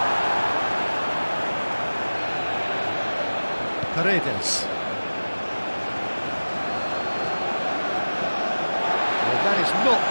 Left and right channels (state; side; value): inverted; both; correlation -1.00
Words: Paredes. Well, that is not